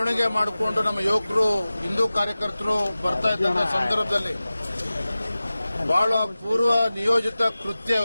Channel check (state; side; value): inverted; both; correlation -0.96